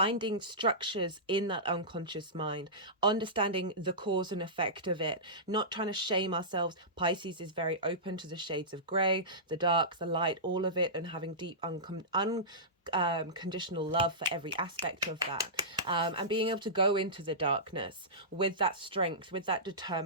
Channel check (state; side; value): normal; both; correlation -0.18